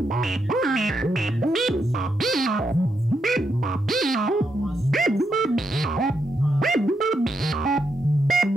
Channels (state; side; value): normal; both; correlation 0.81